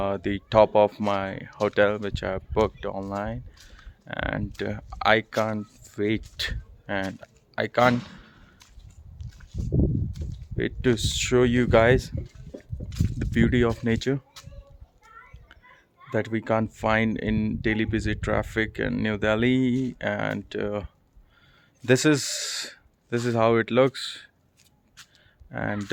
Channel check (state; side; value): identical; both; correlation 1.00